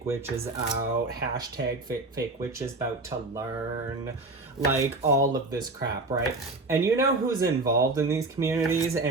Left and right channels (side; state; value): left; quieter; 3.1 dB